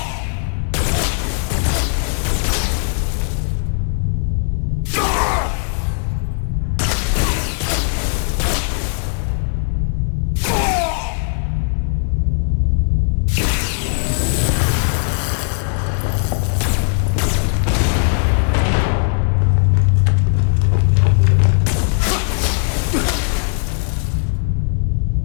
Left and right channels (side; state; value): right; silent; 63 dB below the other